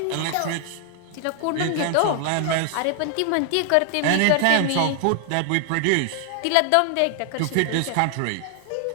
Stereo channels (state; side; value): different; both; correlation 0.00